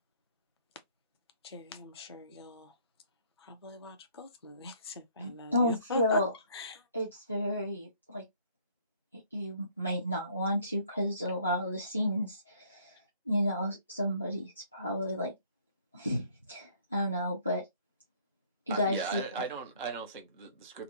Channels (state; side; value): inverted; both; correlation -0.60